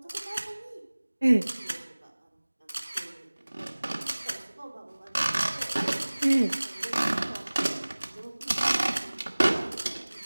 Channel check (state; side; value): inverted; both; correlation -1.00